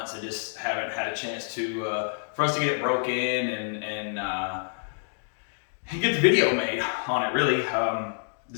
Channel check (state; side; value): silent; right; digital silence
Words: I just haven't had a chance to, for us to get it broke in and get the video made on it, really.